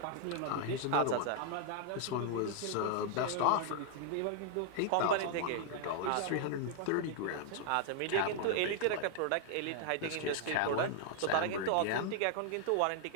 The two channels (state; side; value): different; both; correlation 0.00